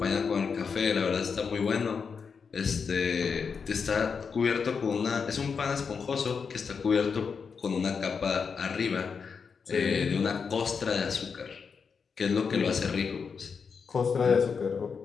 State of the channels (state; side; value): quieter; right; 5.8 dB